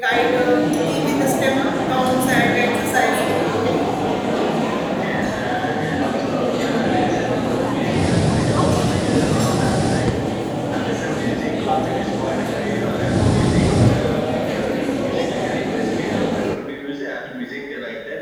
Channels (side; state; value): both; identical; correlation 1.00